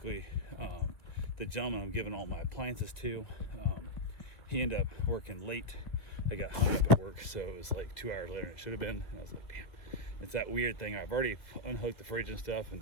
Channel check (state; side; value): late; right; 2.2 ms